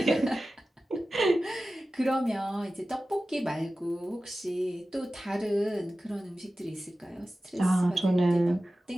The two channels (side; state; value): both; normal; correlation 0.95